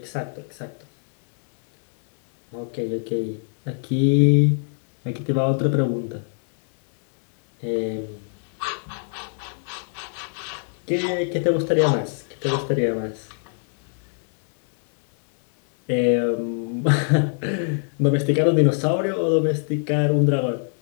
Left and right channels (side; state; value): right; silent; 62 dB below the other